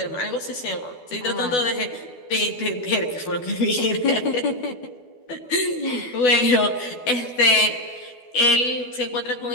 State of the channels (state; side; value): late; right; 12 ms